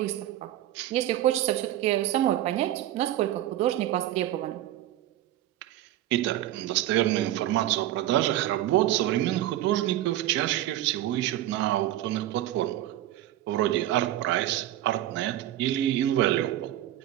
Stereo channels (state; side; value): quieter; left; 13.6 dB